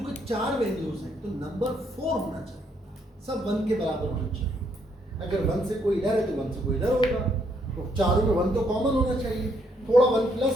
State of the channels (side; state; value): both; normal; correlation 0.72